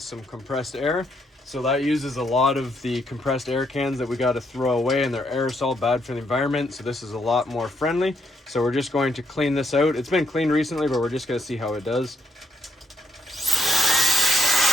some compressed air. So that uses a lot of the compressed air cans that we got to throw away, and they're aerosol, bad for the environment. So this is a lot more friendly. So we're just going to clean this out. It's been cleaned recently, but we're just going to see how it does.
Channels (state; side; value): normal; both; correlation 0.75